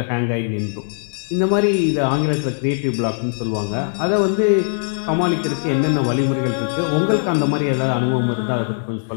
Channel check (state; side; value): silent; right; digital silence